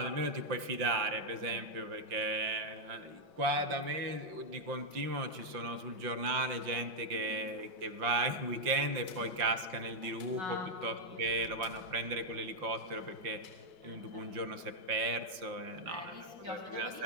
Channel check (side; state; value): left; late; 5.7 ms